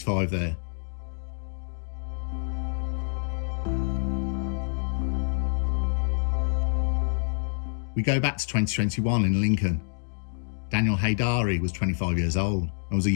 5 there." We go back to 2021 in Lincoln. Daniel Haydari was 25 years old and was a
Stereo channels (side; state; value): right; silent; digital silence